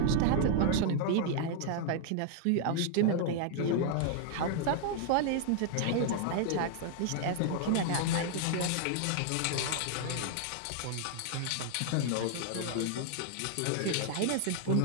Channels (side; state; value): both; different; correlation 0.00